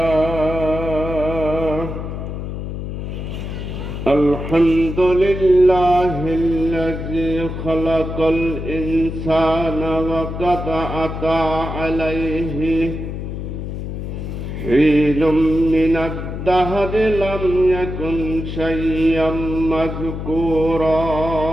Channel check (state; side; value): noise; left; hum, 6 dB below the sound